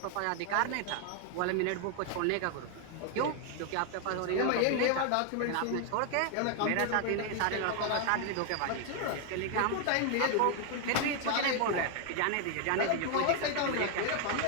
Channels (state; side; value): different; both; correlation 0.00